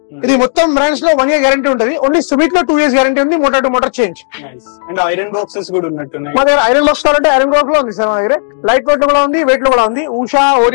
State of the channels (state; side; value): silent; right; digital silence